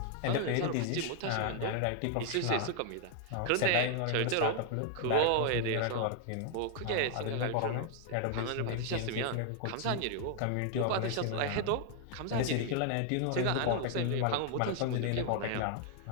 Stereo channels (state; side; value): different; both; correlation 0.00